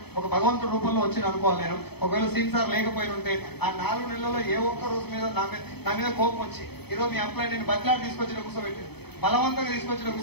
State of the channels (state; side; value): late; right; 0.98 ms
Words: ఒక భగవంతుడి రూపంలో వచ్చి అనుకోవాలి నేను. ఒకవేళ సీన్ సార్ లేకపోయి ఉంటే ఆ 4 నెలల్లో ఏ ఒక్క రోజు మీద నా మీద కోపం వచ్చి ఈరోజు మీ అప్లై నేను బదిలాడి తీసుకొచ్చిన కూర్చోబెట్టి బలవంతంగా తీసుకొచ్చిన